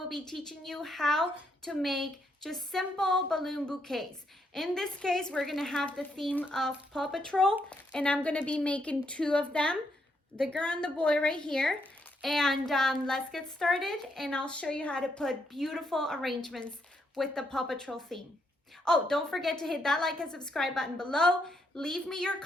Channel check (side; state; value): both; normal; correlation 0.76